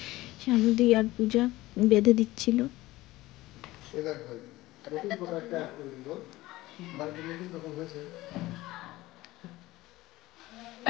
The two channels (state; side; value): quieter; right; 18.2 dB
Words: শানুদি আর পূজা বেঁধে দিচ্ছিল।